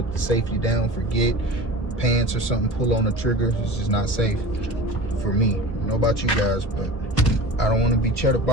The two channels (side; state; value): right; late; 1.0 ms